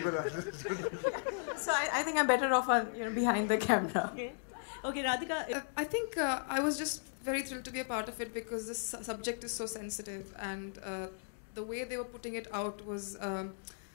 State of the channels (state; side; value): silent; right; digital silence